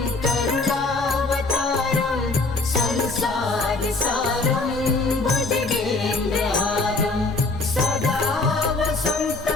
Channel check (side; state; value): right; quieter; 3.4 dB